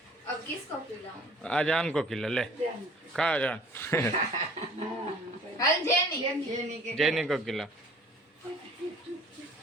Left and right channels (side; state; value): both; normal; correlation 0.51